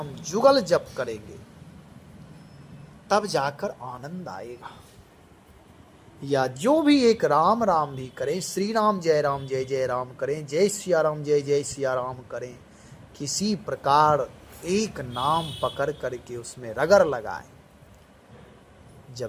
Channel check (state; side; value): identical; both; correlation 1.00